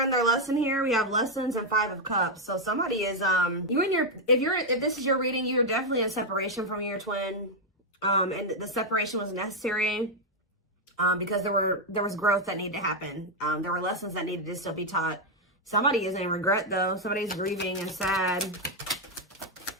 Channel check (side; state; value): both; normal; correlation 0.01